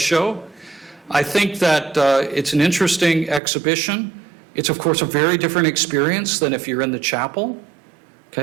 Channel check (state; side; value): drops out; left; at 3.4 s